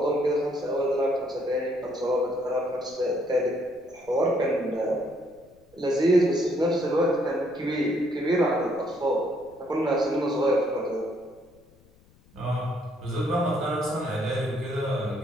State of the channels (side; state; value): left; noise; rumble, 30 dB below the sound